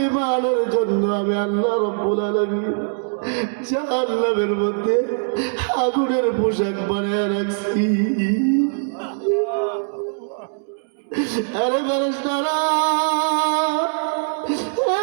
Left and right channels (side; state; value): left; silent; digital silence